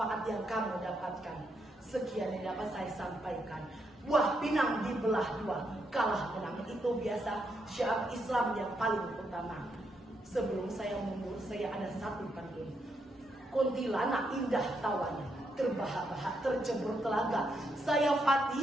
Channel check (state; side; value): normal; both; correlation 0.79